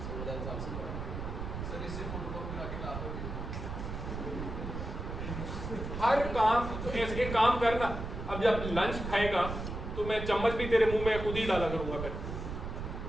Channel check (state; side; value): noise; right; rumble, 6 dB below the sound